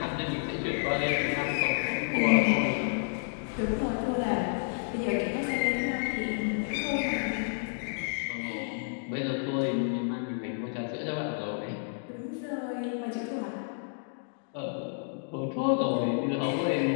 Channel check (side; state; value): right; silent; digital silence